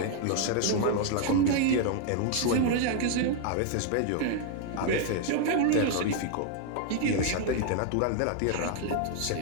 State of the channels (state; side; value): different; both; correlation 0.00